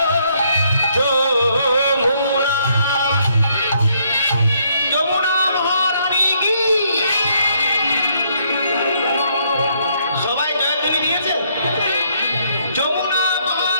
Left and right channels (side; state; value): both; inverted; correlation -0.70